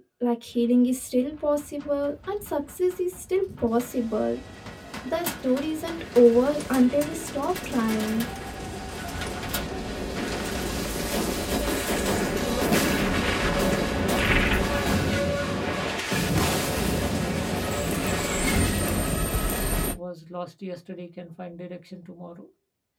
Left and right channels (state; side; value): identical; both; correlation 1.00